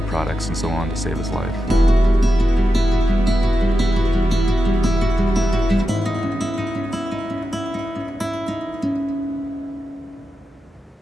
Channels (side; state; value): both; normal; correlation 0.89